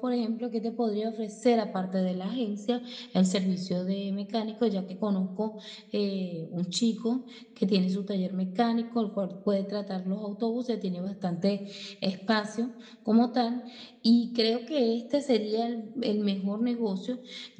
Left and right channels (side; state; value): both; identical; correlation 1.00